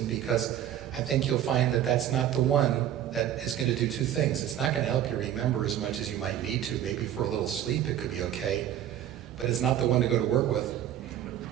because I think you'll find that that's not the one that is going to do two things. It's not going to help you remember as much as you might need to. Maybe for a little sleep it could be okay, but it's not the one to go to work with.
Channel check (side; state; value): left; quieter; 11.1 dB